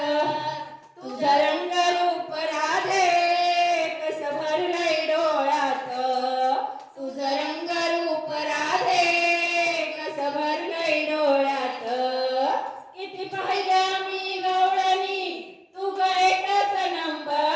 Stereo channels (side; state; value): both; identical; correlation 1.00